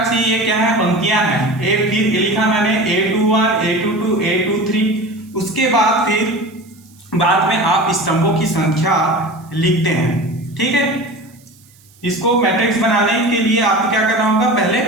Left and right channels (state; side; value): noise; right; hiss, 29 dB below the sound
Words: से ये क्या है, पंक्तियां हैं। फिर लिखा मैंने A21, A22, A23, उसके बाद फिर बाद में आप स्तंभों की संख्या लिखते हैं, ठीक है। इसको मैट्रिक्स बनाने के लिए आपको क्या करना होगा, पहले